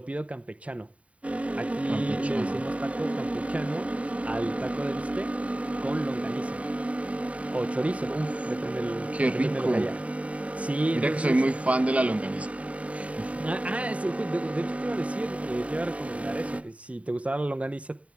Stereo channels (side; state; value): left; late; 0.066 ms